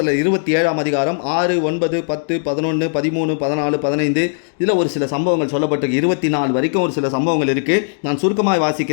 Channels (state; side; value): silent; right; digital silence